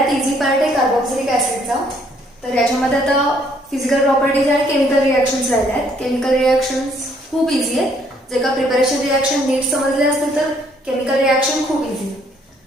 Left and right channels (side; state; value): both; normal; correlation 0.66